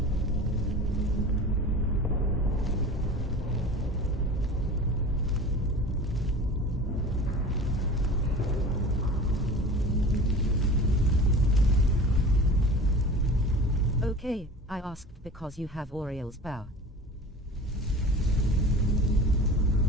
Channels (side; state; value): both; normal; correlation 0.37